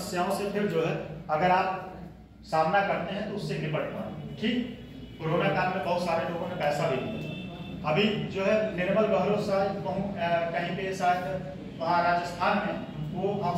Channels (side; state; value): both; identical; correlation 1.00